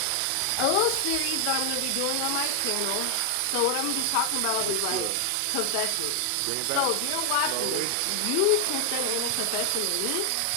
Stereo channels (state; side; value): different; both; correlation 0.00